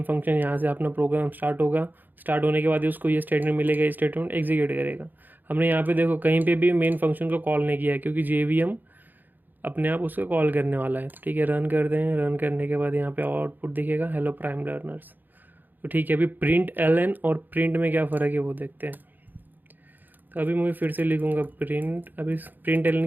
फंक्शन, यहाँ से अपना प्रोग्राम स्टार्ट होगा। स्टार्ट होने के बाद उसको ये स्टेटमेंट मिलेगा, ये स्टेटमेंट एग्जीक्यूट करेगा। हमने यहाँ पे देखो कहीं पे भी मेन फंक्शन को कॉल नहीं किया है क्योंकि JVM अपने आप उसको कॉल करने वाला है। तो ठीक है, रन करते हैं। रन करने के बाद यहाँ पे आउटपुट दिखेगा हेलो प्राइम लर्नर्स। तो ठीक है, अभी प्रिंट एलन और प्रिंट में क्या फ़र्क है वो देखते हैं। तो अभी मैं फिर से लिखूँगा प्रिंट, अभी प्रिंट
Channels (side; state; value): left; late; 0.087 ms